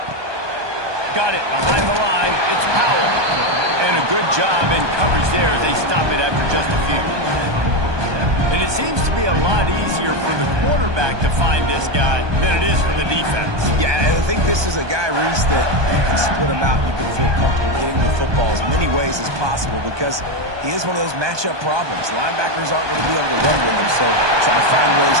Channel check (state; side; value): late; left; 1.2 ms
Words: Got it behind the line. It's Powell. And a good job in coverage there as they stop it after just a few. And it seems to be a lot easier for the quarterback to find this guy than it is for the defense. Yeah, and I think this is a guy, Reese, that you can split him out and you can feel comfortable getting the football as many ways as possible because he is one of those matchup problems. Linebackers aren't going to be able to run with him, so try to find ways